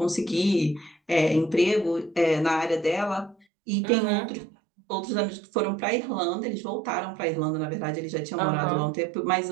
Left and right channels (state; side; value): drops out; left; at 3.5 s